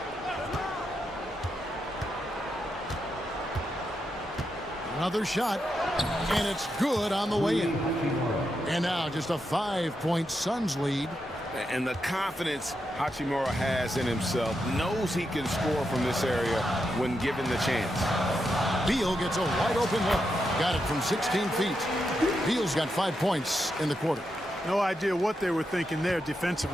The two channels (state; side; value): normal; both; correlation 0.85